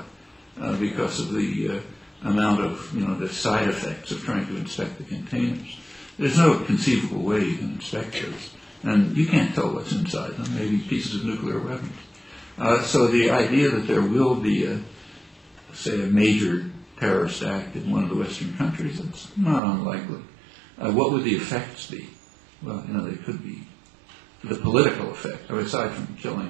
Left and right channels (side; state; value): left; drops out; at 19.6 s